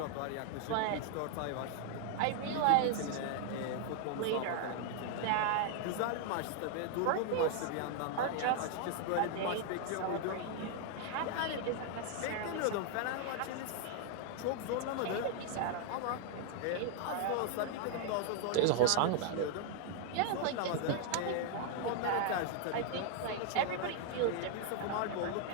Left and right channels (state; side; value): different; both; correlation 0.00